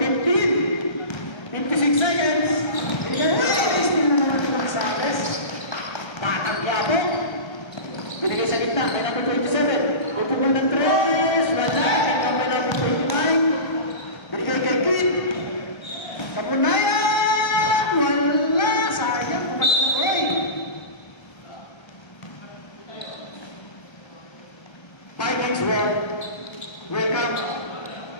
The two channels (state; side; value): late; right; 1.3 ms